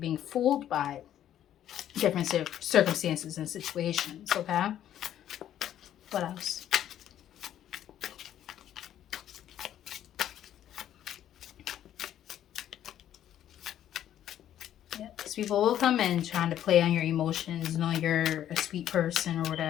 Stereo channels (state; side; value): quieter; right; 11.2 dB